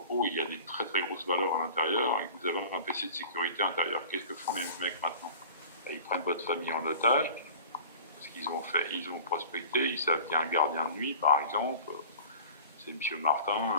il y a des très très grosses valeurs à l'intérieur et que vous avez un PC de sécurité à l'intérieur, qu'est-ce que font les mecs maintenant? Ils prennent votre famille en otage, parce qu'ils ont prospecté, ils savent qu'il y a un gardien de nuit, par exemple, c'est M. Martin,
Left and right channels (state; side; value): inverted; both; correlation -0.41